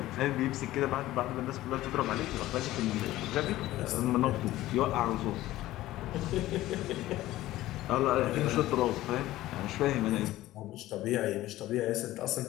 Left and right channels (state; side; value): quieter; right; 15.8 dB